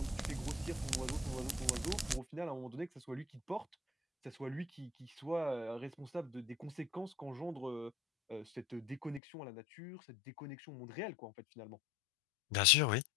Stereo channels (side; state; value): right; drops out; at 9.2 s